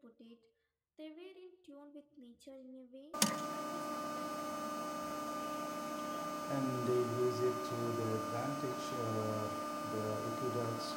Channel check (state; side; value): identical; both; correlation 1.00